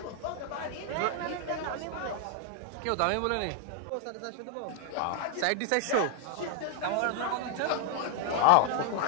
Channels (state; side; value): different; both; correlation 0.00